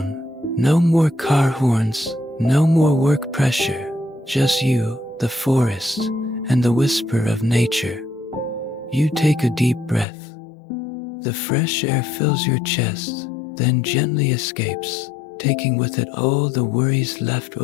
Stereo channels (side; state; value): right; drops out; at 10.1 s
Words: No more car horns, no more work pressure, just you, the forest, and the whisper of nature. You take a deep breath. The fresh air fills your chest, then gently escapes, taking with it all the worries left